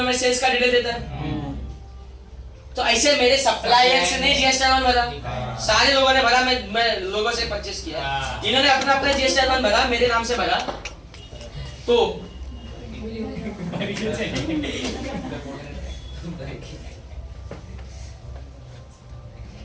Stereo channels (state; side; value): identical; both; correlation 1.00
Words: मैं सेल्स का डिटेल देता है। तो ऐसे मेरे सप्लायर्स ने GSTR 1 भरा, सारे लोगों ने भरा, मैं लोगों से परचेस किया, इन्होंने अपना अपना GSTR 1 भरा, मेरे नाम से भरा। तो